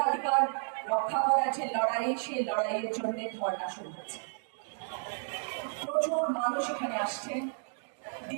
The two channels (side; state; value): left; silent; 56 dB below the other